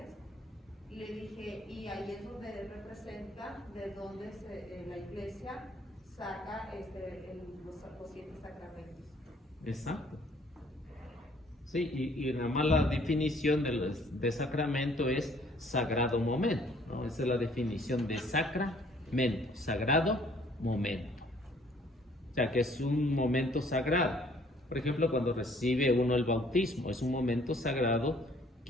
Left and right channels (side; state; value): both; normal; correlation 0.60